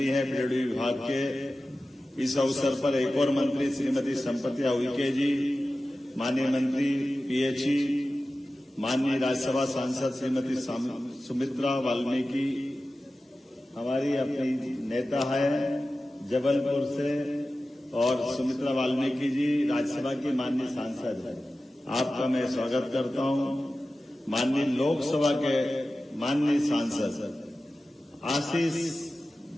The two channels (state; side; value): normal; both; correlation 0.95